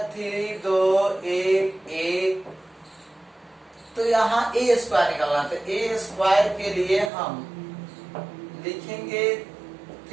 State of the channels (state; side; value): drops out; left; at 7.1 s